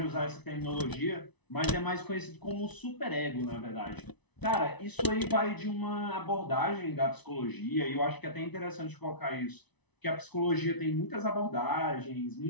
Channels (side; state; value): right; late; 1.0 ms